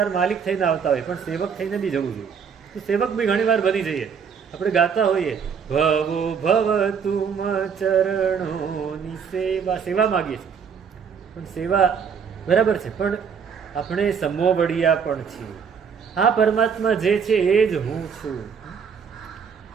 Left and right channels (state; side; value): quieter; left; 6.6 dB